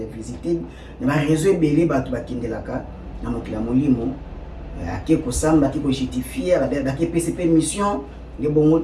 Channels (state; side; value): identical; both; correlation 1.00